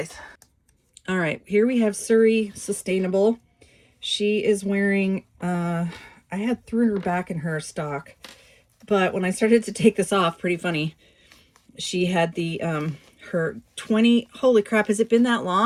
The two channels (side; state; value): both; identical; correlation 1.00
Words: All right, here we have Surrey Sustainable. She is wearing, I had thrown her back in her stock, but when I started to take this off, pretty funny, she had the, her holy crap, has it been that